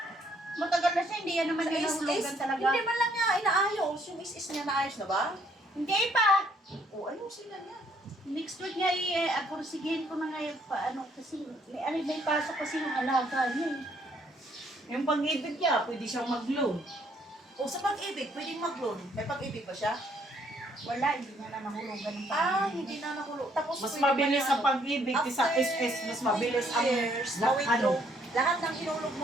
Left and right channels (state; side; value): normal; both; correlation 0.67